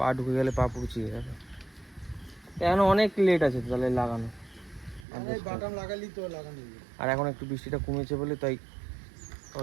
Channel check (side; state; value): left; drops out; at 5.1 s